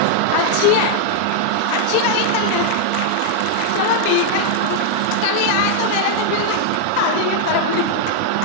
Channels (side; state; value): both; different; correlation -0.01